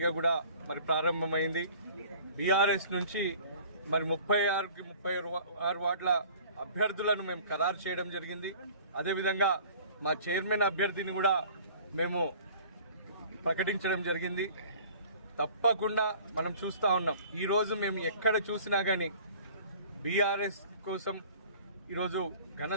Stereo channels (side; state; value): both; inverted; correlation -0.48